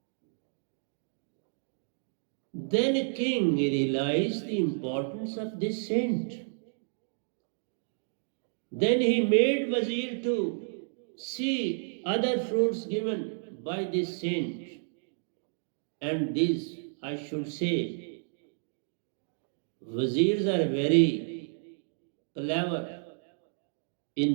Then a king realized the importance of this saint. Then he made wazir to see other fruits given by this saint. And these, I should say, wazirs are very clever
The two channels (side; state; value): left; silent; digital silence